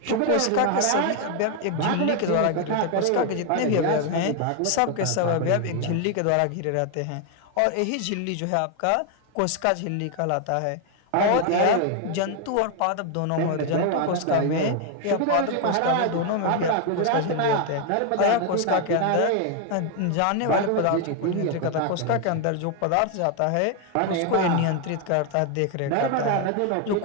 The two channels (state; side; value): different; both; correlation 0.01